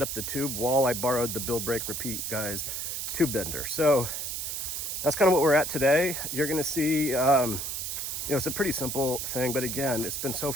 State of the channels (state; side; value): noise; right; hiss, 3 dB below the sound